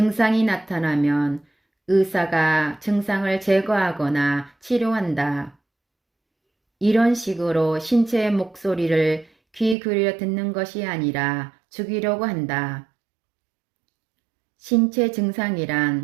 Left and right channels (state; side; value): drops out; left; at 9.8 s